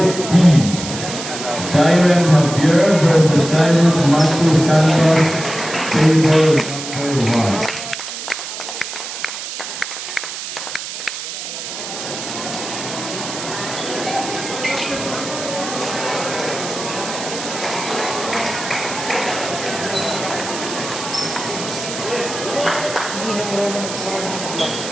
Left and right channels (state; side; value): noise; right; hiss, 8 dB below the sound